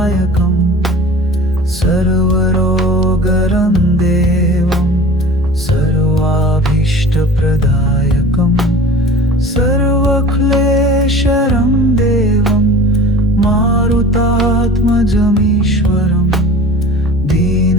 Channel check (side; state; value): both; normal; correlation 0.41